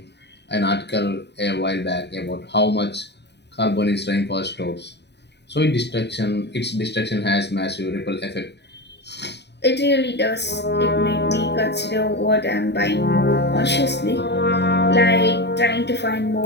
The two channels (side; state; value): right; late; 0.50 ms